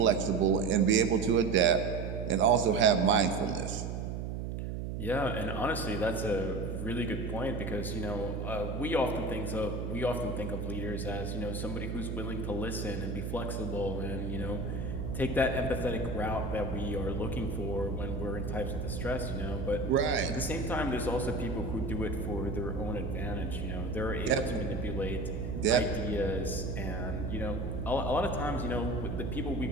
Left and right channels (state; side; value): noise; right; hum, 4 dB below the sound